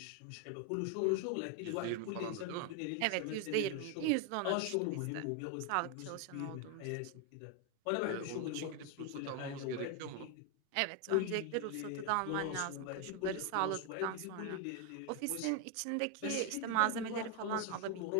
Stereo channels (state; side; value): different; both; correlation 0.01